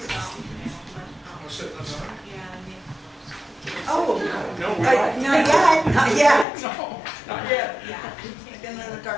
Oh, No, we don't. not yet, not yet. No, not yet. I've been in the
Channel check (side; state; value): right; drops out; at 6.5 s